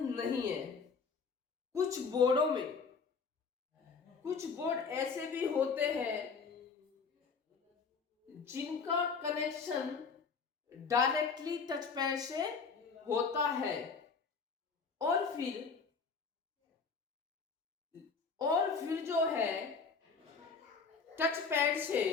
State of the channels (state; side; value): quieter; right; 5.2 dB